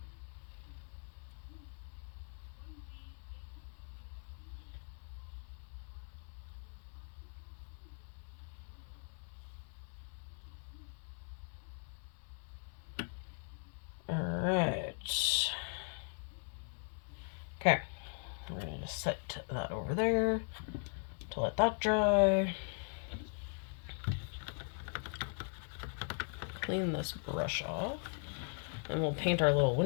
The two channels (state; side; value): silent; right; 51 dB below the other